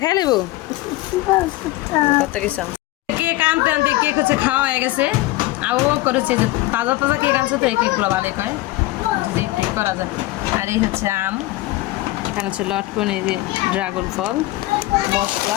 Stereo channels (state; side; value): quieter; right; 18.2 dB